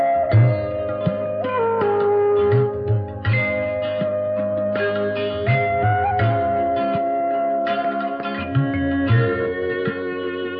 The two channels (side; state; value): both; identical; correlation 1.00